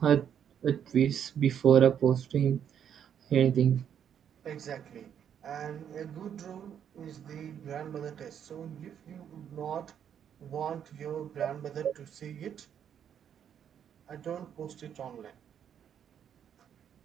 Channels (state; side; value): quieter; left; 8.8 dB